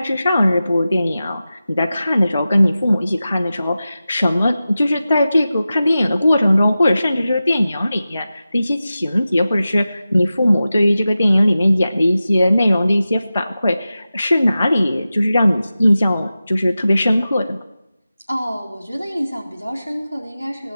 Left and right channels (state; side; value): inverted; both; correlation -0.94